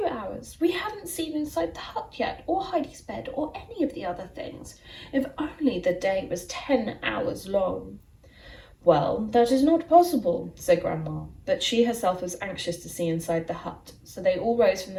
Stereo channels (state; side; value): identical; both; correlation 1.00